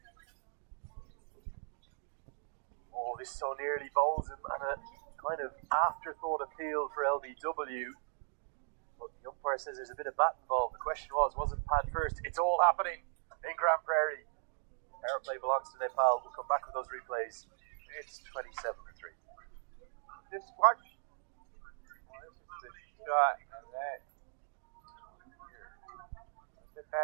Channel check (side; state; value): left; silent; 53 dB below the other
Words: Oh, this so nearly bowls him, and a kind of afterthought appeal for LBW. But the umpire says there's a bit of bat involved. The question was it pad first? It's all happening in Grand Prairie. Power play belongs to Nepal. We'll come back with those replays. It's 27-3. Just watch. Oh, this is the shot on that. Was there